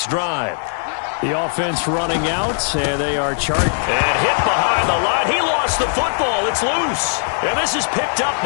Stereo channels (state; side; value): silent; right; digital silence